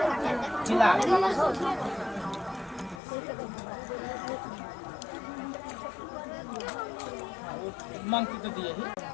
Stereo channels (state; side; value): drops out; right; at 3.0 s